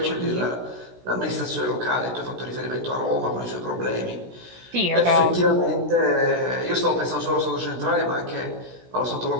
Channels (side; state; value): left; late; 16 ms